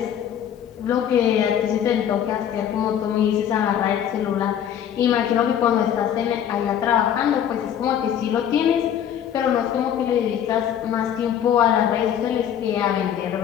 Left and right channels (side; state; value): right; quieter; 9.5 dB